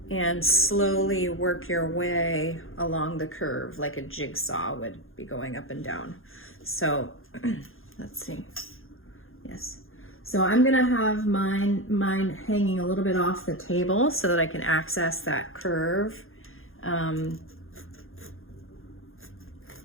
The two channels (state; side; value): late; right; 0.60 ms